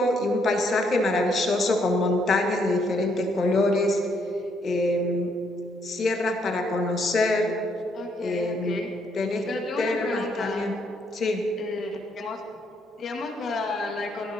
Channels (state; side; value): normal; both; correlation 0.72